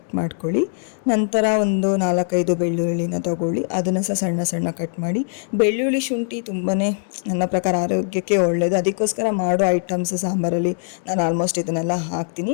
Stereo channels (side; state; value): right; silent; digital silence